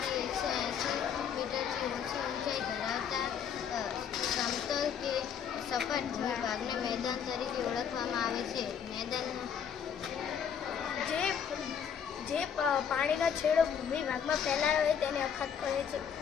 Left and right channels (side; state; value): right; quieter; 7.8 dB